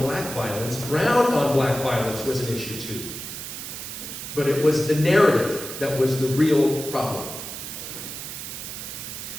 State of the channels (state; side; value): noise; right; hiss, 8 dB below the sound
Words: black violence, brown on black violence was an issue too. But it was the narrative that was the real problem.